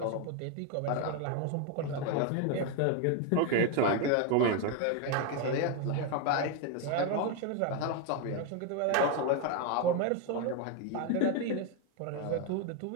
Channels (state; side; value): different; both; correlation 0.01